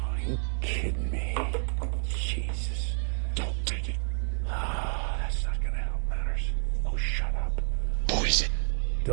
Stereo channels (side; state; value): left; silent; 58 dB below the other